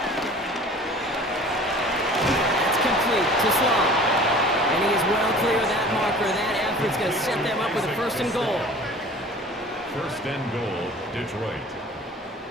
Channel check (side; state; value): both; normal; correlation 0.45